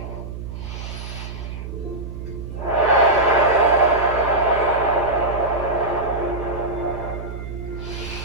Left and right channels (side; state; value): right; noise; hum, 9 dB below the sound